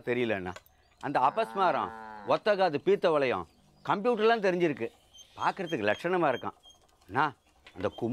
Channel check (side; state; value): both; identical; correlation 1.00